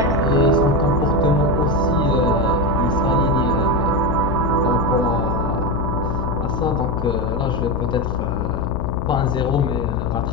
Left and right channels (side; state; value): left; noise; hum, 2 dB below the sound